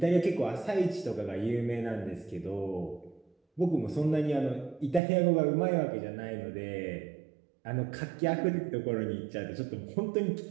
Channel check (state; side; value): drops out; left; at 5.0 s